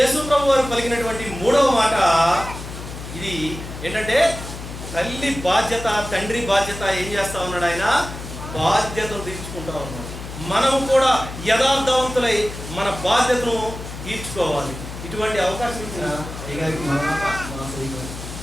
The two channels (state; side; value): noise; left; hum, 10 dB below the sound